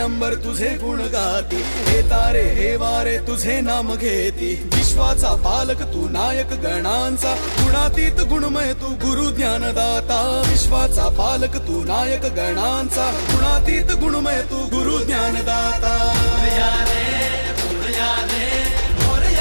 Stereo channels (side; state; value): both; inverted; correlation -1.00